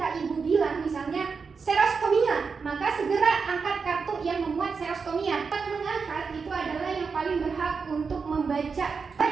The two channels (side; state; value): left; quieter; 5.2 dB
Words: Ibu bilang misalnya serostomia, maka segera angkat kartu yang memuat serostomia. Mengangkat itu adalah yang paling berhak untuk membaca.